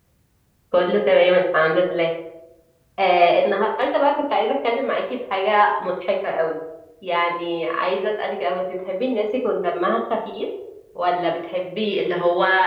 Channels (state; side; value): identical; both; correlation 1.00